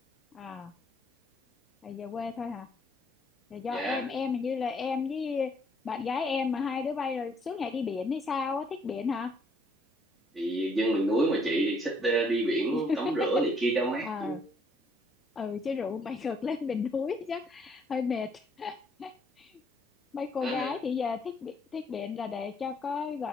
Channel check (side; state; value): both; normal; correlation 0.67